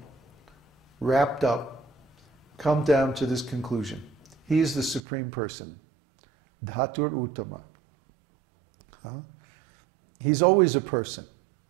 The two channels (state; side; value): drops out; left; at 5.0 s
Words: wrapped up, come down to this conclusion. He is the supreme person. Dhatur uttama. He's always a person.